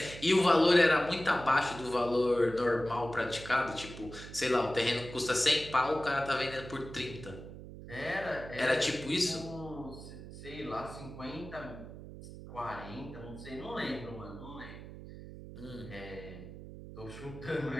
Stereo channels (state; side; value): noise; right; hum, 13 dB below the sound